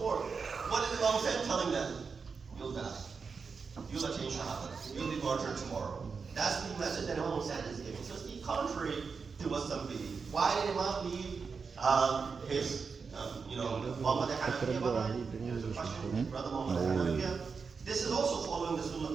What is Imam Hussain telling them? You'll die. You'll attain shahada. You'll be martyred tomorrow. That's the message that Imam Hussain is giving. So it's the contrary to what some believe. Why did Imam leave his, Muhammad Hanafiya behind? There's a question, brother Muhammad Hanafiya. This is also following the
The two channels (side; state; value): left; quieter; 5.3 dB